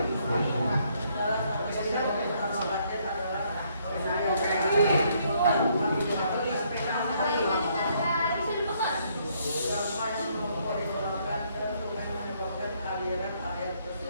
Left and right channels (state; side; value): inverted; both; correlation -0.69